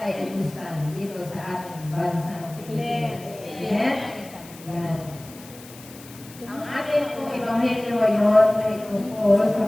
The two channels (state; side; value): noise; left; hiss, 19 dB below the sound